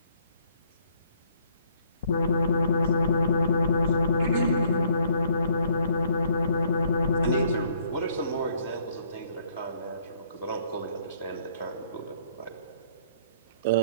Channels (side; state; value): both; inverted; correlation -0.63